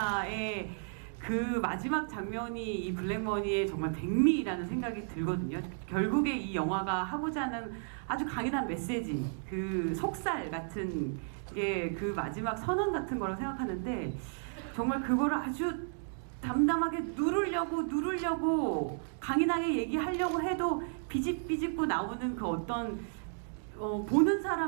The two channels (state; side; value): silent; left; digital silence